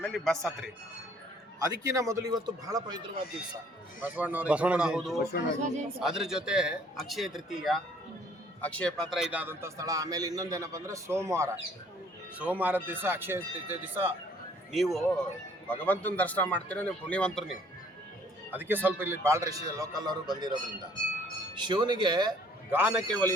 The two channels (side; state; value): both; normal; correlation 0.60